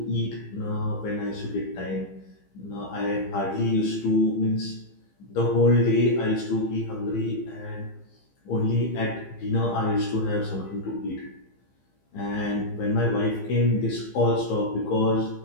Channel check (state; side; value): late; right; 15 ms